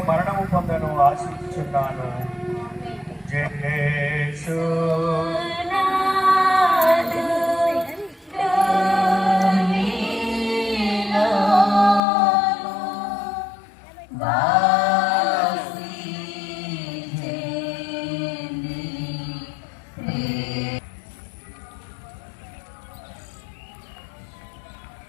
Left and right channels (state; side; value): drops out; right; at 12.0 s